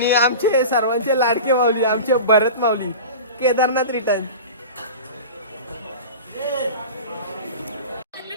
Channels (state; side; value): inverted; both; correlation -0.32